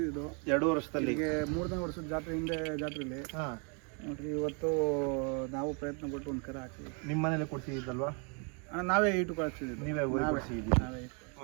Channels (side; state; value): left; quieter; 36.6 dB